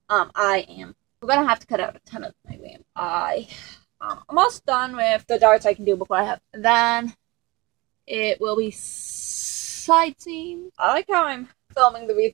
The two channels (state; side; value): quieter; left; 23.3 dB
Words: We're gonna have to cut out a ton of my RAM. I'm almost done with the darts I can do before I have. Then it will be side seam. I like how I'm filming the